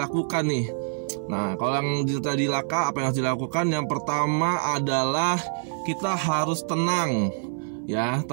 nih? Nah, kalau yang terjadi laka, apa yang harus dilakukan? Yang pertama adalah kita harus tenang. Ya,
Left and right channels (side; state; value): left; silent; 58 dB below the other